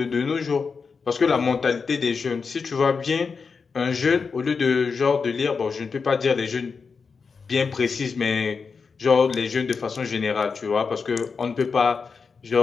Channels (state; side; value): quieter; right; 5.2 dB